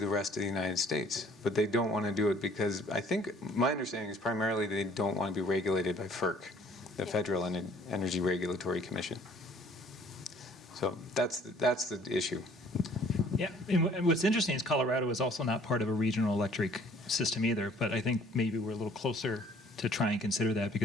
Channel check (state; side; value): normal; both; correlation 0.56